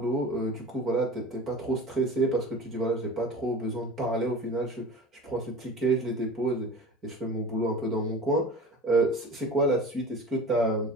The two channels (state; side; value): normal; both; correlation 0.36